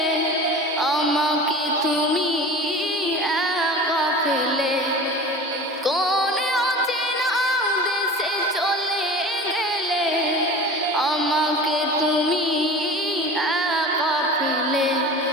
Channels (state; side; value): normal; both; correlation 0.36